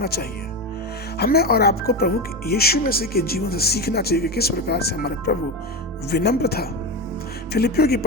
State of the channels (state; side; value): normal; both; correlation 0.18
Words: चाहिए। हमें और आपको प्रभु यीशु मसीह के जीवन से सीखना चाहिए कि किस प्रकार से हमारा प्रभु विनम्र था। फिलिपियों की